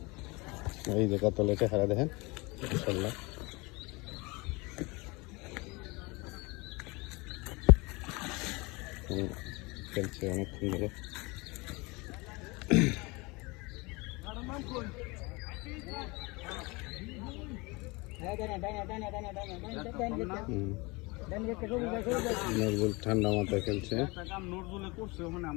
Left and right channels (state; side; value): quieter; right; 25.7 dB